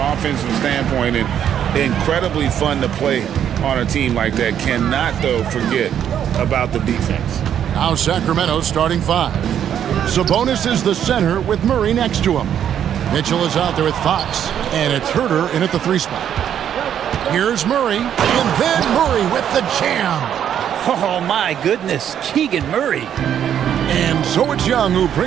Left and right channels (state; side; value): quieter; left; 9.5 dB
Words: standpoint and incredibly fun to play on a team like that. Cannot, though, forget about the defense. Now Sacramento starting five. Sabonis is the center with Murray next to him. Mitchell is out there with Fox, and it's Herter in at the 3 spot. Here's Murray, and then Murray with the jam. Oh, my goodness. Keegan Murray. And so it's Young who